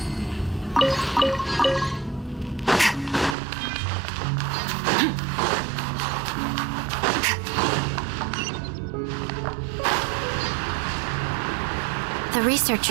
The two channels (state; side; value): drops out; left; at 3.4 s